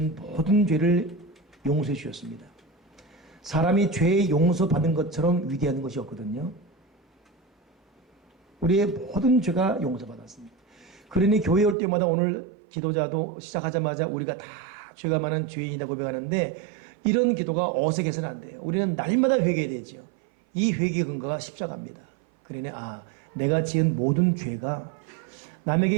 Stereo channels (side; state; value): left; drops out; at 11.8 s